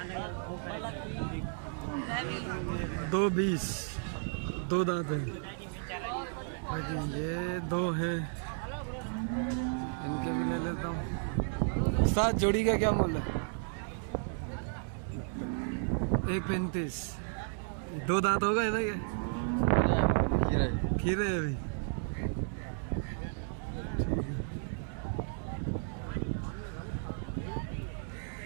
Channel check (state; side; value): silent; left; 55 dB below the other